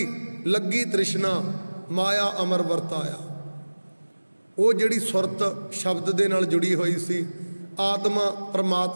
ਲੱਗੀ ਤ੍ਰਿਸ਼ਨਾ, ਮਾਇਆ ਅਮਰ ਵਰਤਾਇਆ। ਉਹ ਜਿਹੜੀ ਸੁਰਤ ਸ਼ਬਦ ਦੇ ਨਾਲ ਜੁੜੀ ਹੋਈ ਸੀ, ਆਤਮਾ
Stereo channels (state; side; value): inverted; both; correlation -1.00